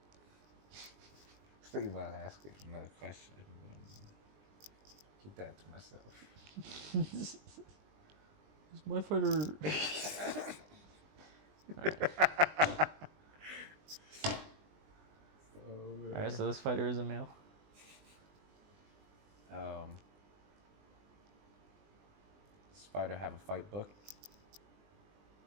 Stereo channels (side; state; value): left; late; 20 ms